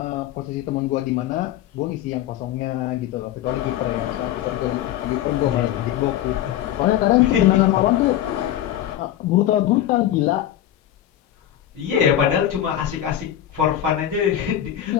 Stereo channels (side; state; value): right; quieter; 11.9 dB